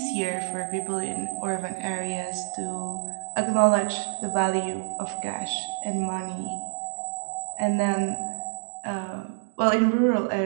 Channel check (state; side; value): silent; left; digital silence